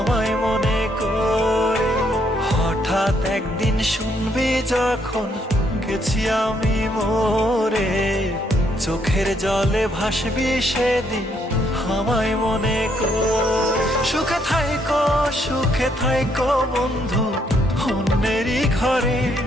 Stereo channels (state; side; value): normal; both; correlation 0.72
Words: মনে করে। হঠাৎ একদিন শুনবি যখন গেছি আমি মরে, চোখের জলে ভাসবি সেদিন আমায় মনে করে। সুখে থাইকো বন্ধু অন্যেরই ঘরে,